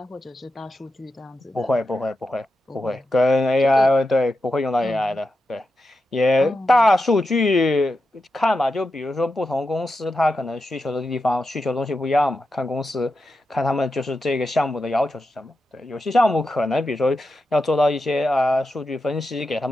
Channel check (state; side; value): normal; both; correlation 0.89